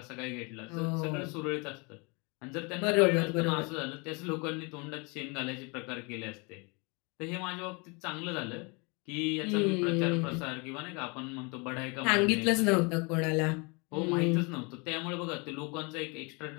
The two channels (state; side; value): quieter; right; 30.3 dB